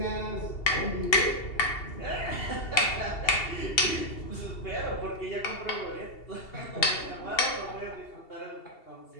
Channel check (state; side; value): late; right; 2.7 ms